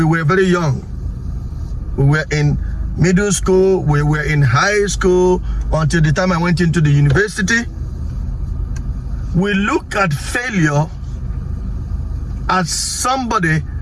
were very young. We were in middle school, we were in high school, until the time I went into the university. We look at failure as somebody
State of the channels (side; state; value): both; identical; correlation 1.00